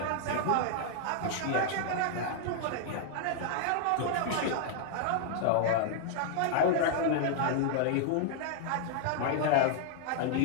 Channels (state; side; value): different; both; correlation -0.01